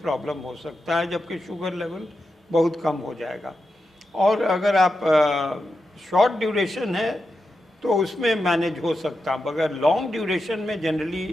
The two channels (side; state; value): both; normal; correlation 0.89